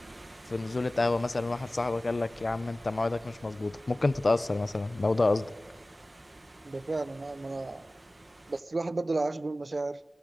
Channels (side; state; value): both; normal; correlation 0.97